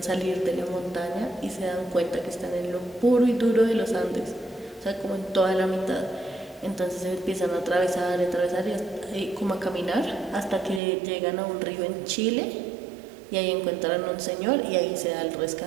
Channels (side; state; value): left; drops out; at 10.8 s